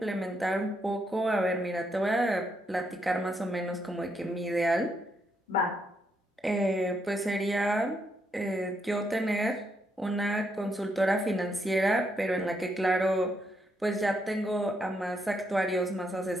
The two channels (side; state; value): both; normal; correlation 0.78